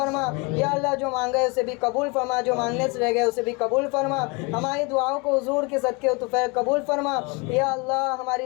یا اللہ، جو مانگے اسے بھی قبول فرما، جو مانگنے سے رہ گئے اسے بھی قبول فرما، ہماری دعاؤں کو حضور کے صدقے و طفیل قبول فرما یا اللہ،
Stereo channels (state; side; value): quieter; right; 29.4 dB